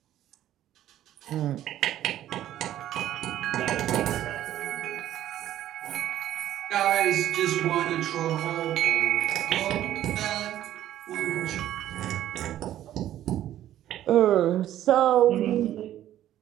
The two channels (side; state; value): left; quieter; 12.4 dB